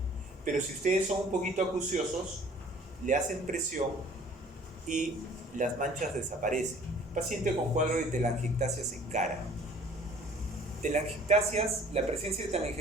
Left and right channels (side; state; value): both; normal; correlation 0.52